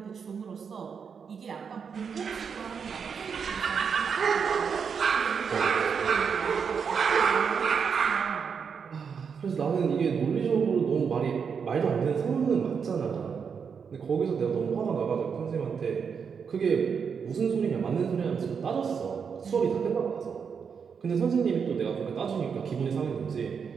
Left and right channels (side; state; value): left; quieter; 6.4 dB